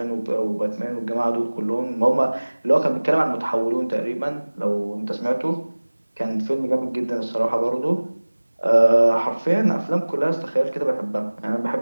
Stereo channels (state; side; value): inverted; both; correlation -1.00